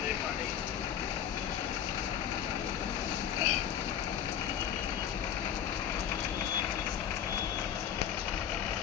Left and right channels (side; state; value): right; quieter; 9.4 dB